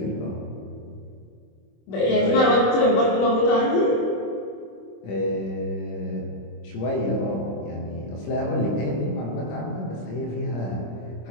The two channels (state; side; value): late; right; 26 ms